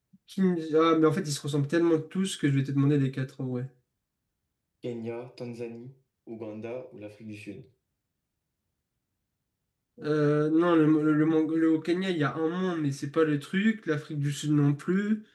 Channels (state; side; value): identical; both; correlation 1.00